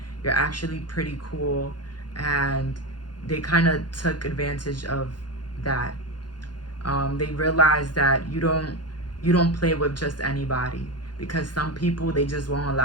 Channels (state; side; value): late; right; 0.70 ms